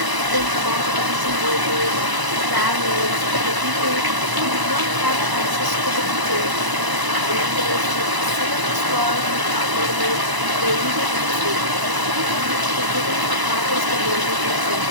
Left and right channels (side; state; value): left; late; 1.0 ms